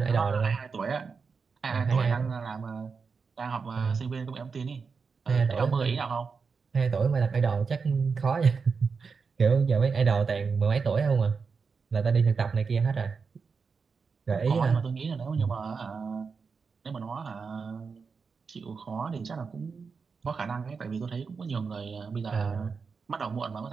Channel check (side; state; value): left; quieter; 5.2 dB